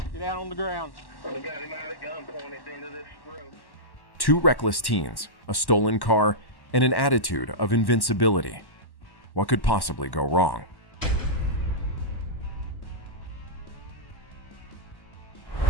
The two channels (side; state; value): right; late; 1.1 ms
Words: Get down on the ground. We got him out of gun pointed into this road. Two reckless teens, a stolen car, and an attitude of invincibility. What could possibly go wrong?